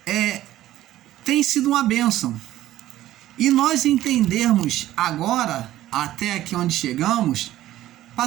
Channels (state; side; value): quieter; left; 14.2 dB